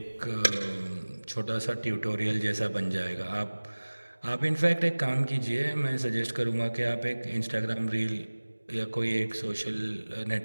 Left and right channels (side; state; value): both; inverted; correlation -1.00